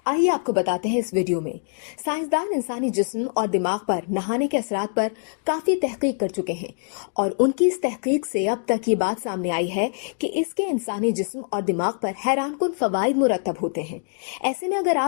आइए आपको बताते हैं इस वीडियो में। साइंसदान इंसानी जिस्म और दिमाग पर नहाने के असरात पर काफी तहकीक कर चुके हैं और उनकी इस तहकीक से अब तक ये बात सामने आई है कि इसके इंसानी जिस्म और दिमाग पर हैरानकुन फवाइद मुरतब होते हैं। ऐसे में अगर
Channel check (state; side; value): silent; right; digital silence